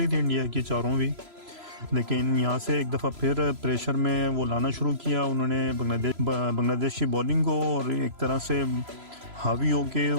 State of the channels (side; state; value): left; late; 3.0 ms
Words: थी इंडिया की चारों भी, लेकिन यहाँ से एक दफ़ा फिर प्रेशर में वो लाना शुरू किया उन्होंने बांग्लादेश की बॉलिंग को, और एक तरह से हावी